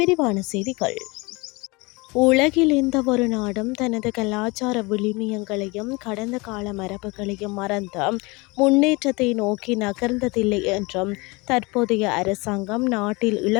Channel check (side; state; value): right; quieter; 25.8 dB